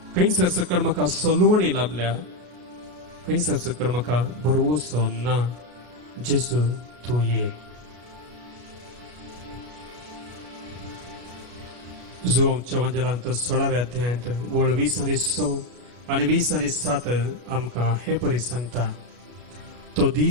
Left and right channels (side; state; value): left; late; 33 ms